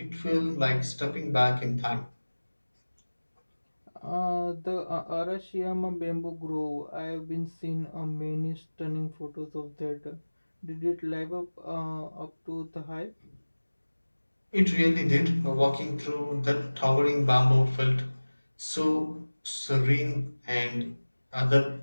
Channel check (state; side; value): inverted; both; correlation -1.00